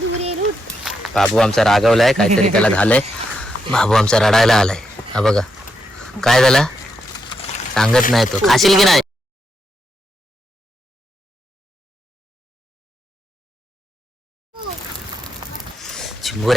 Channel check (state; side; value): normal; both; correlation 0.82